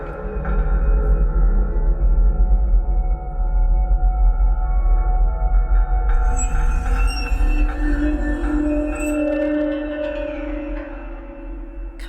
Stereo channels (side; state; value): both; identical; correlation 1.00